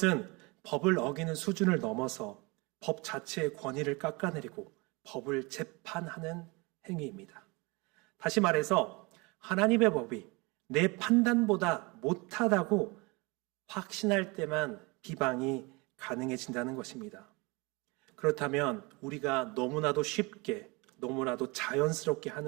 법을 어기는 수준을 넘어서 법 자체의 권위를 깎아내리고 법을 재판하는 행위입니다. 다시 말해서 하나님의 법이 내 판단보다 못하다고 확신할 때만 비방이 가능해진다는 것입니다. 그렇다면 우리가 너무나도 쉽게, 너무나도 자연스럽게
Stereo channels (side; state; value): left; quieter; 26.7 dB